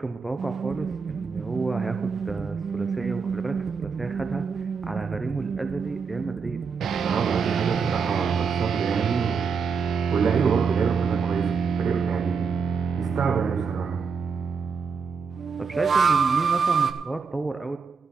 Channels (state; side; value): quieter; left; 5.5 dB